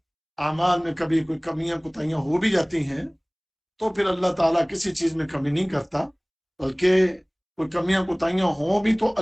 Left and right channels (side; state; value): both; identical; correlation 1.00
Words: اعمال میں کبھی کوئی کمیاں کوتاہیاں ہو بھی جاتی ہیں تو پھر اللہ تعالیٰ کسی چیز میں کمی نہیں کرتا، بلکہ کوئی کمیاں کوتاہیاں ہوں بھی تو